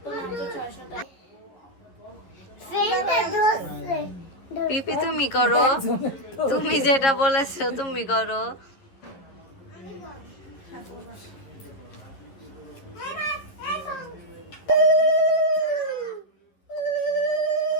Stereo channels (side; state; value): right; late; 11 ms